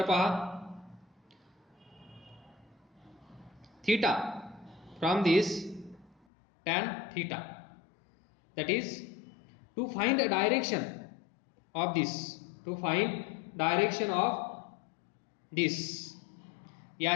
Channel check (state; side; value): drops out; right; at 6.2 s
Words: पहा, theta from this tan theta, that is to find a direction of this, to find direction of this,